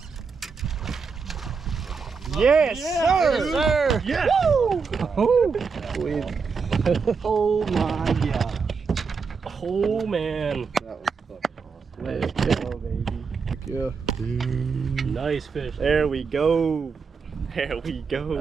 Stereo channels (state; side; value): quieter; left; 5.3 dB